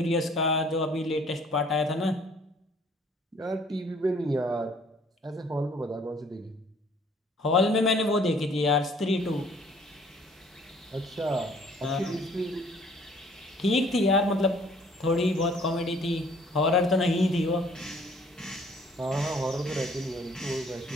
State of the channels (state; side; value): normal; both; correlation 0.57